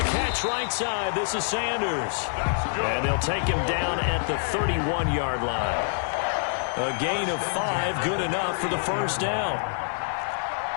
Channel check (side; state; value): right; silent; digital silence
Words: catch right side, this is Sanders. And they'll take him down at the 31-yard line. A gain of 5, good enough for the 1st down.